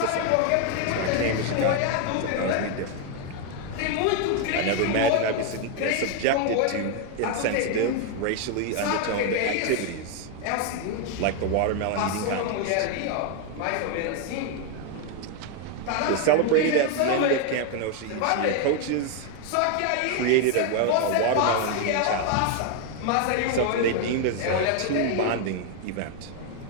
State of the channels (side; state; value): both; different; correlation 0.01